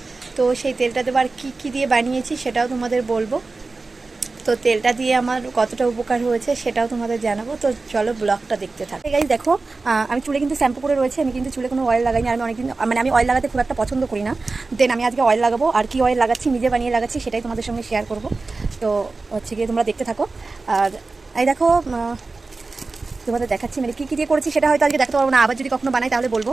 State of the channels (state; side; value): quieter; left; 3.7 dB